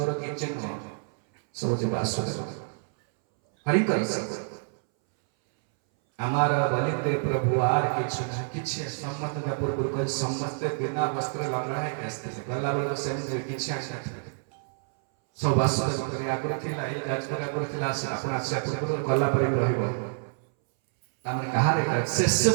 କିଛି ନୁହଁ ସବୁ ଯେ ବାସୁଦେବ ହରିଙ୍କର ସବୁ ଆମର ବଲିତେ ପ୍ରଭୁ ଆର କିଛି ସମସ୍ତେ ପୂର୍ବରୁ କହି ସମସ୍ତେ ବିନା ବସ୍ତ୍ର ଲଙ୍ଗଳା ହେଇକି ଆସିଥିଲେ ଗଲା ବେଳକୁ ସେମିତି କିଛି ଆସିନଥିଲେ सब वासुदेव आगुरी थिला ए जाजपुर आगुरी थिला आपण आसे पूर्व गला पर रहइबो तामने कहा रे शेष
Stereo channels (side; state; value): left; silent; 60 dB below the other